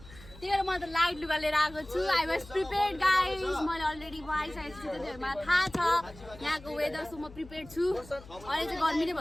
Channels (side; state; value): left; noise; hum, 19 dB below the sound